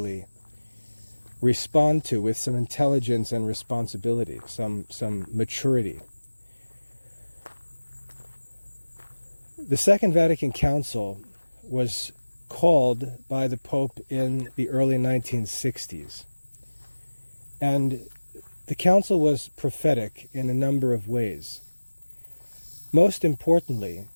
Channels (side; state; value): both; inverted; correlation -1.00